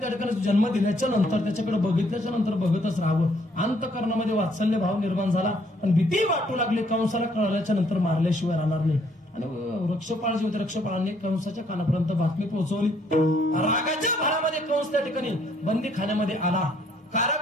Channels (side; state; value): both; normal; correlation 0.66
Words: ठिकाणी जन्म दिल्याच्या नंतर त्याच्याकडे बघितल्याच्या नंतर बघतच राहावं. अंतःकरणामध्ये वात्सल्य भाव निर्माण झाला आणि भीती वाटू लागली. कंसाला कळल्याच्या नंतर मारल्याशिवाय राहणार नाही. आणि रक्षपाळ जे होते, रक्षपाळांनी कंसाच्या कानापर्यंत बातमी पोहोचवली. रागाच्या भरामध्ये कंस त्या ठिकाणी बंदी खाण्यामध्ये आला,